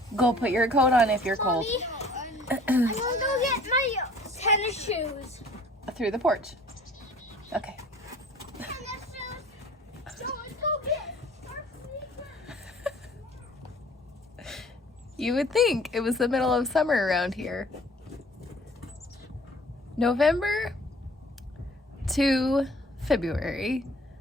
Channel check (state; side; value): normal; both; correlation 0.52